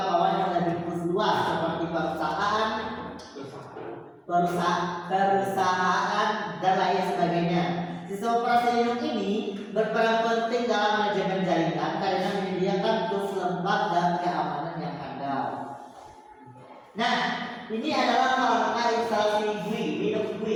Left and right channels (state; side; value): identical; both; correlation 1.00